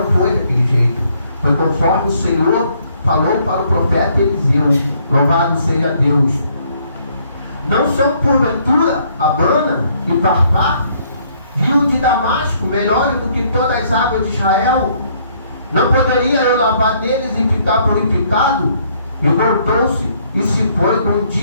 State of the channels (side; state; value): both; inverted; correlation -0.66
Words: foi daquele jeito. Foi conforme o Senhor falou para o profeta Eliseu. Louvado seja Deus. Não são porventura Abana e Farpar, rio de Damasco, melhores do que todas as águas de Israel? Não poderia eu lavar neles e ficar purificado? E voltou-se e se foi com